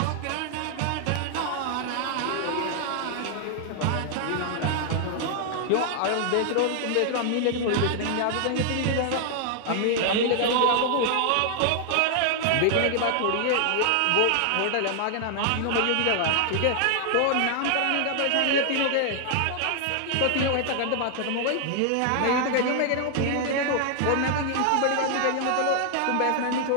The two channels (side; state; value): both; different; correlation 0.00